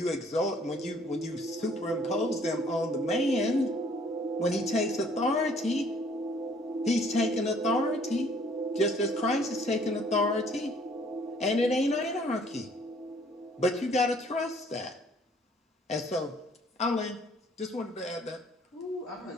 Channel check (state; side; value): normal; both; correlation 0.60